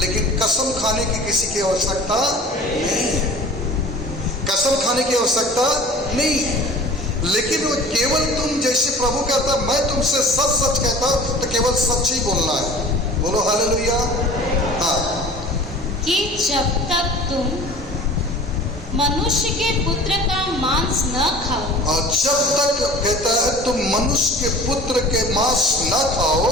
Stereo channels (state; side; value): normal; both; correlation 0.42